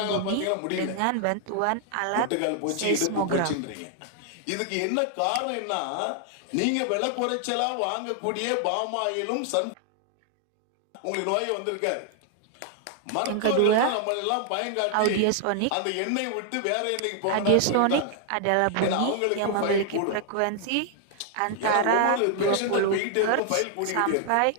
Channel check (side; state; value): both; different; correlation 0.00